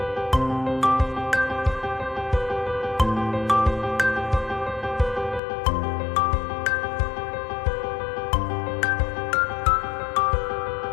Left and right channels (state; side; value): drops out; right; at 5.4 s